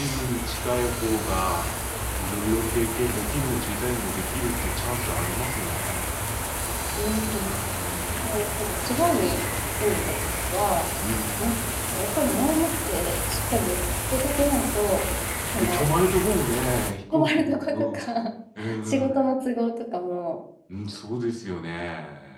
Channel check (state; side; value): identical; both; correlation 1.00